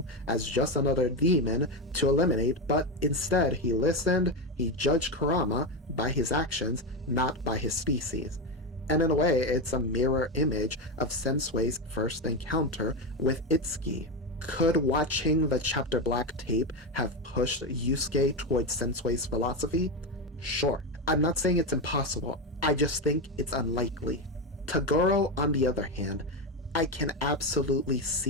as just another demon to eliminate, but instead he listened, he judged Kurama by his actions, not by his species. And in a way, it's a mirror image of Sensui's first encounter with Itsuki. Could watching the Chapter Black tape have pushed Yusuke towards Sensui's philosophy? Sure. I'm not saying it's impossible, I just think it's unlikely. Toguro, on the other hand, I can absolutely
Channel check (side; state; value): both; normal; correlation 0.13